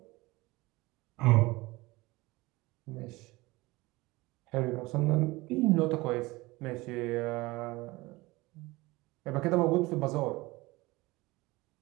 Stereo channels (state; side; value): quieter; left; 21.5 dB